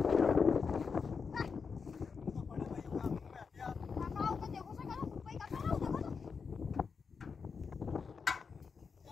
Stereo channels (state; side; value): quieter; right; 5.5 dB